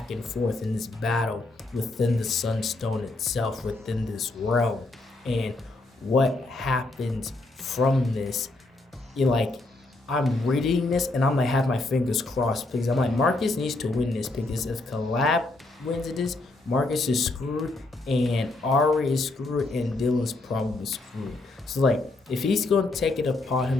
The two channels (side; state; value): right; quieter; 3.0 dB